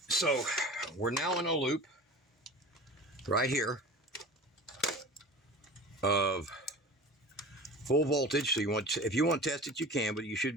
we're now in a loop right here of full voltage. So if you want to test it, you can, but you should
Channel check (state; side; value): normal; both; correlation 0.37